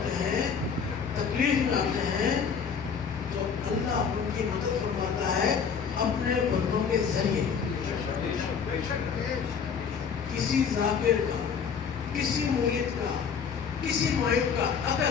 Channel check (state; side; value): quieter; right; 6.5 dB